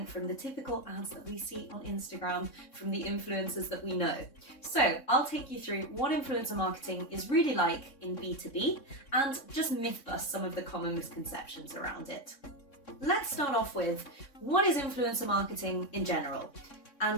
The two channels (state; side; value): late; right; 3.6 ms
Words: from the typical ads that we see on Instagram from the influencers that we know. So I'll take you through what influencer marketing is really like in B2B and just myth bust some of the common misconceptions around it. Let's start off with, what is influencer marketing in general?